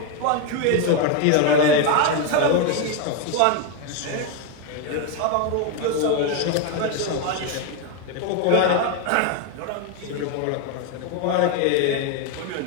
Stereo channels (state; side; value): different; both; correlation 0.02